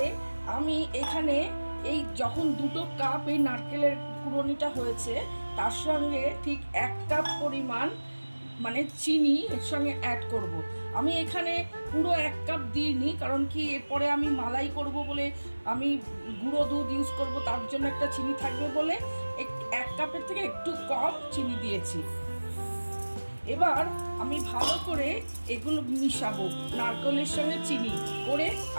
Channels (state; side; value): inverted; both; correlation -1.00